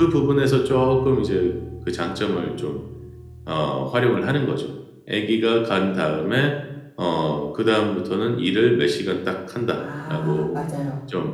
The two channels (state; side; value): identical; both; correlation 1.00